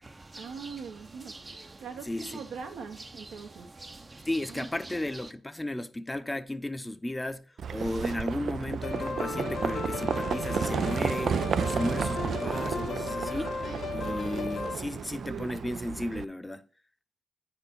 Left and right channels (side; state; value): both; normal; correlation 0.85